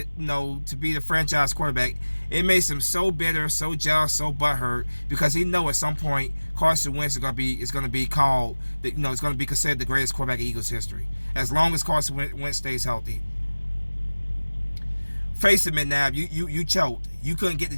to be the franchise quarterback. It makes him so bitter, so jealous, so butthurt, because he knows at some point Carson Wentz is going to be called, it's going to be considered the greatest quarterback in Eagles history, as long as Carson Wentz stays healthy. Face it, McNabb, you choked. You couldn't get the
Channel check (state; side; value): inverted; both; correlation -1.00